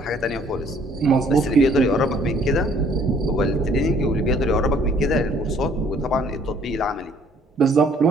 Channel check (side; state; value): both; normal; correlation 0.60